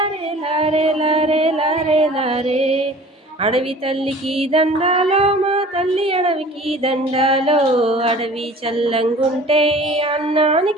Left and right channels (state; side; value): normal; both; correlation 0.45